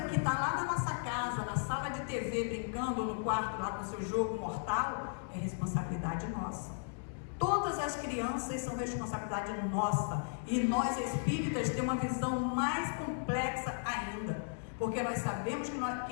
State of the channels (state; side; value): silent; right; digital silence